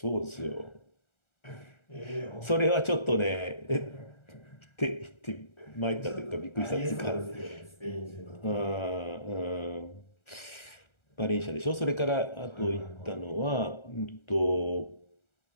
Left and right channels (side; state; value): right; late; 1.4 ms